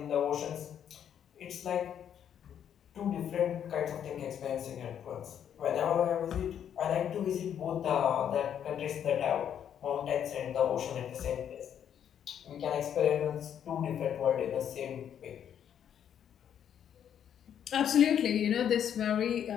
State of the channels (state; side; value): quieter; right; 9.2 dB